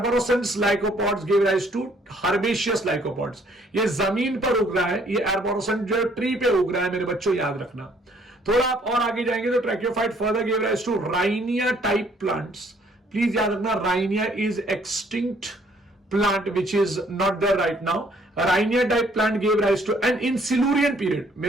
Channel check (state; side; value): normal; both; correlation 0.63